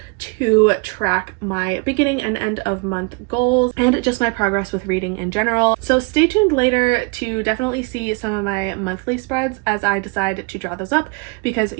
to track my beginning and end of month goals and just my progress with reading in general. So stay tuned later to definitely see some of my monthly spreads as I decide to draw those up, because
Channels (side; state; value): left; quieter; 31.0 dB